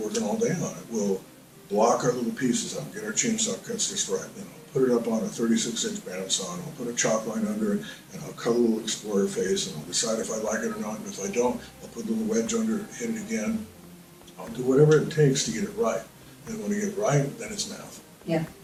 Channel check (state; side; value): identical; both; correlation 1.00